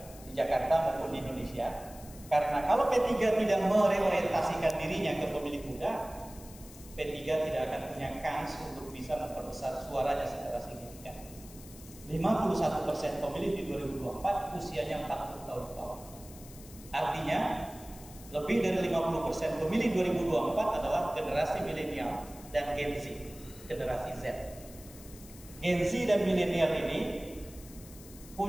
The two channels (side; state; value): left; noise; hiss, 19 dB below the sound